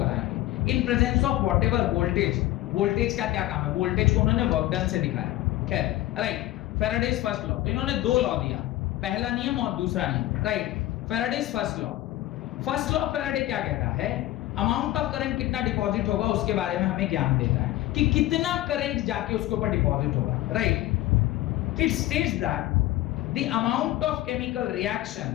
in presence of whatever voltage. Voltage का क्या काम है, वोल्टेज को उन्होंने वर्क डन से दिखाया। खैर, राइट, फैराडेज फर्स्ट लॉ, इन्होंने दो लॉ दिया, पहला नियम और दूसरा नियम, right. Faraday's first law Faraday क्या कहता है, अमाउंट ऑफ करंट कितना डिपॉजिट होगा उसके बारे में हमें ज्ञान देता है कि कितना करंट जाके उसके ऊपर डिपॉजिट होगा, right. It states that the amount of chemical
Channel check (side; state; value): right; quieter; 15.7 dB